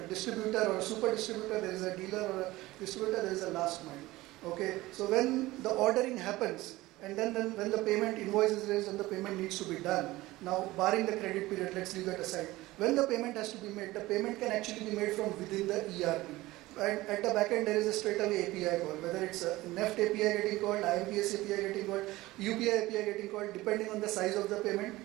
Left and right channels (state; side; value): quieter; left; 18.5 dB